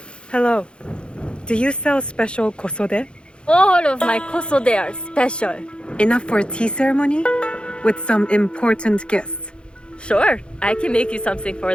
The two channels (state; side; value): late; right; 0.055 ms